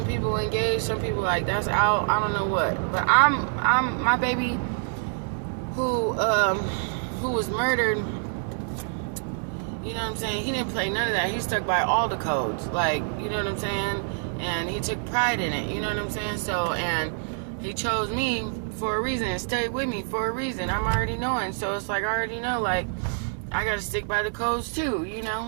people engage, some people like that's out. I don't know what, but I'm my baby who who was murdered, you know what I'm saying? He didn't play none of that. He stuck by all the codes. Like, you know what I'm saying? And he took pride in it. You know what I'm saying? So, and he chose me for a reason and stayed with me for a reason. I'm already knowing. So it's like, I already know, like, I got to stick by the codes too, you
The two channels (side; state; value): left; silent; digital silence